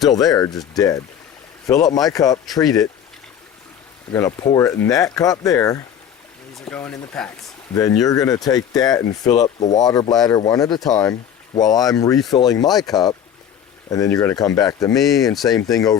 there, just dead. Fill up my cup, treat it. I'm going to pour it in that cup there. these are going in the packs. Then you're going to take that and fill up the water bladder one at a time while I'm refilling my cup. And then you're going to come back to me and same thing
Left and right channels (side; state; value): right; quieter; 9.1 dB